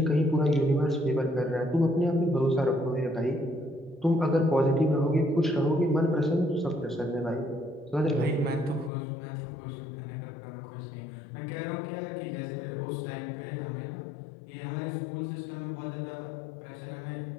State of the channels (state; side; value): drops out; right; at 8.9 s